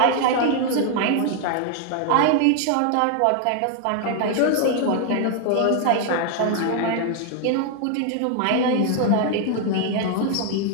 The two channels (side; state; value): both; different; correlation 0.00